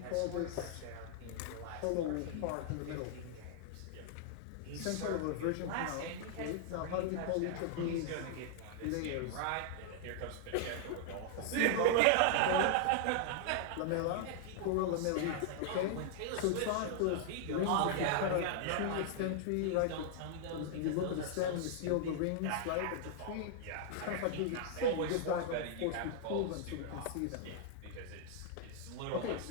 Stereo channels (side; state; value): both; different; correlation -0.01